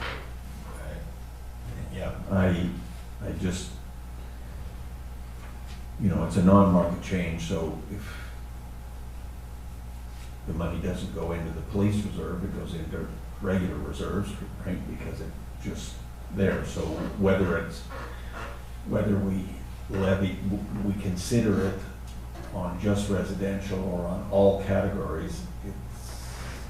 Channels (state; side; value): identical; both; correlation 1.00